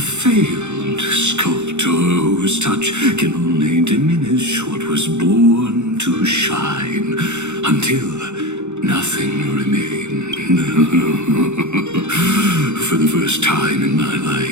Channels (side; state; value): left; late; 0.83 ms